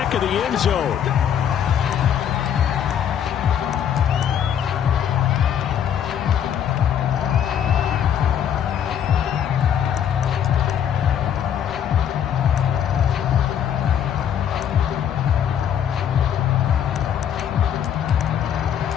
of the end zone.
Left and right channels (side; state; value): right; quieter; 9.1 dB